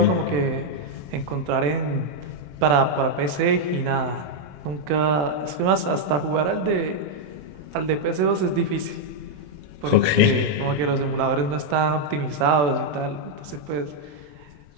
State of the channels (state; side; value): late; left; 27 ms